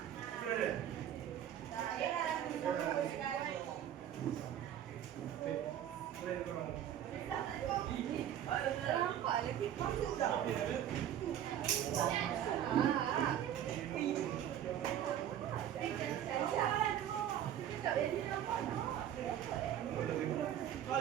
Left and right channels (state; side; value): quieter; left; 10.6 dB